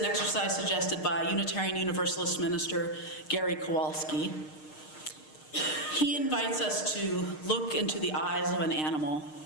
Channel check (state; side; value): late; right; 6.5 ms